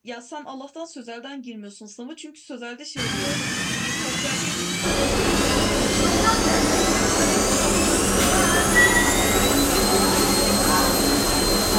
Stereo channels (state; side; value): identical; both; correlation 1.00